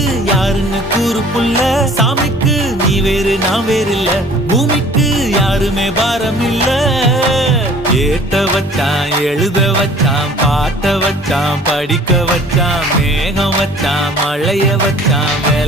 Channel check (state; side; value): normal; both; correlation 0.50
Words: யாருன்னு கூறு புள்ள சாமிக்கு நீ வேறு நான் வேறு இல்ல பூமிக்கு யாருமே பாரம் இல்ல ஏத்த வச்சான் எழுத வச்சான் பாட்ட வச்சான் படிக்க வச்சான் மேகம் வச்சான் மழைய வச்சான்